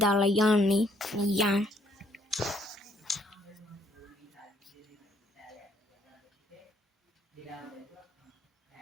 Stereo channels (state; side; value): normal; both; correlation 0.67